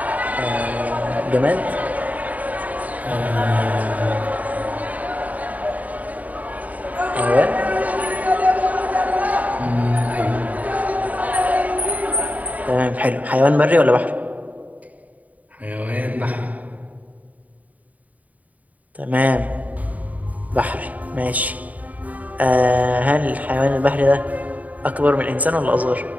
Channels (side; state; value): left; late; 0.072 ms